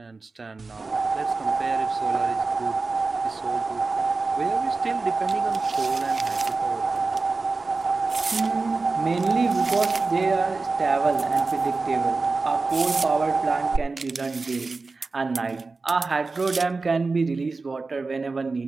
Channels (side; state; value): left; quieter; 3.9 dB